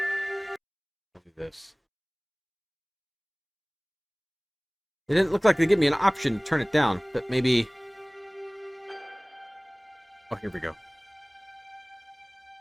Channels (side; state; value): both; identical; correlation 1.00